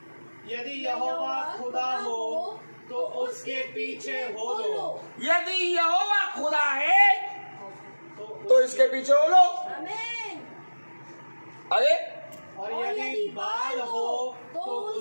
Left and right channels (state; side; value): inverted; both; correlation -1.00